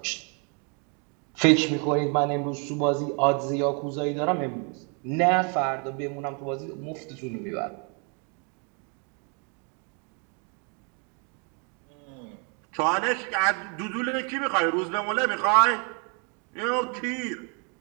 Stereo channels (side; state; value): left; quieter; 37.0 dB